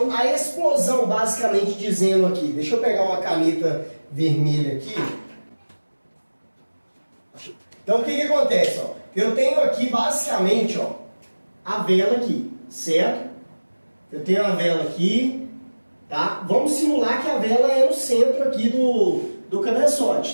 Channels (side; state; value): both; inverted; correlation -1.00